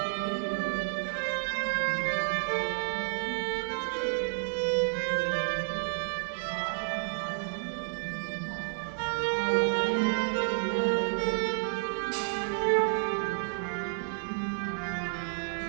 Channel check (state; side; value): silent; left; 57 dB below the other